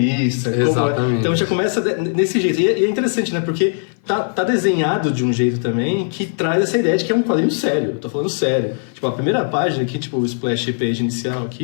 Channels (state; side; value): silent; right; 57 dB below the other